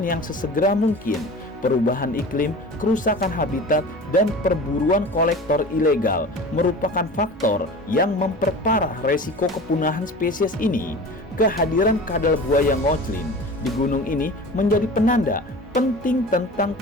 yang sesegera mungkin. Perubahan iklim, kerusakan habitat, dan perburuan kolektor ilegal merupakan faktor yang memperparah resiko kepunahan spesies ini. Kehadiran kadal buaya ngoclin di gunung ini menjadi penanda penting tentang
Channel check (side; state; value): both; normal; correlation 0.37